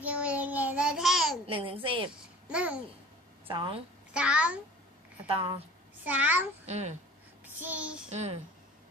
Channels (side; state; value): both; normal; correlation 0.44